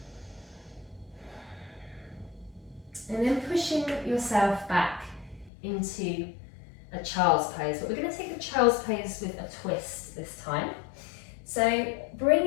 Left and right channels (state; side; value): drops out; right; at 5.5 s